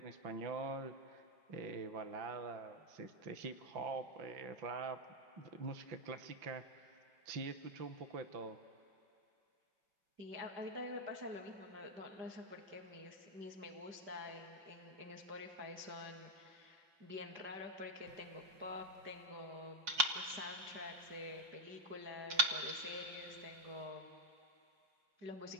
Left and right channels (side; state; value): left; late; 5.5 ms